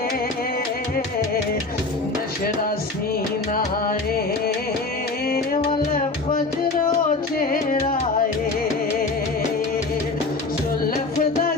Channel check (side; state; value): right; quieter; 3.5 dB